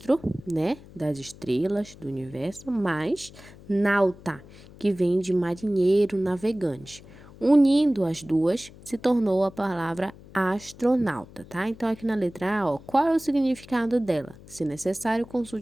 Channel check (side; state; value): left; noise; hum, 20 dB below the sound